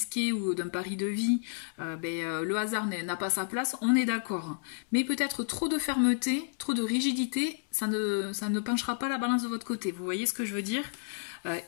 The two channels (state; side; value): silent; right; digital silence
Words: ou d'un pari de vie, le hasard n'a pas sa place, on est d'accord. Mais peut-être trop de fermeté, trop de rigidité, ça ne penchera pas la balance de votre côté. Vous voyez ce que je veux dire ?